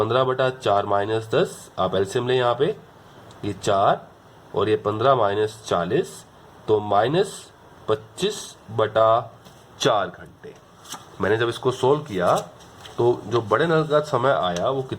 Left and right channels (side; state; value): both; identical; correlation 1.00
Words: बटा 4 माइनस 10। आप एलसीएम लें, यहाँ पे ये 4 और ये 15 माइनस 40, तो -25 बटा 4 घंटे। मैंने जब इसको सोल्व किया तो जो बड़े नल का समय आया वो